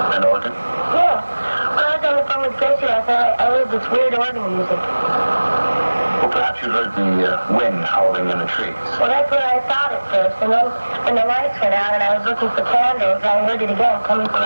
An organ? Yeah. When I was on the phone with Gracie last night, I heard this weird organ music. Well, perhaps you heard the wind howling in the trees. Well, that's what I thought at first, and then when the lights went out and I was looking for candles, I heard it again coming from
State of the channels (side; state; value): both; inverted; correlation -1.00